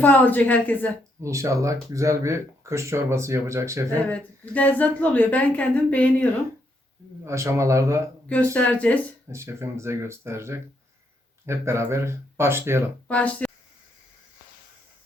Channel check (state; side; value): normal; both; correlation 0.76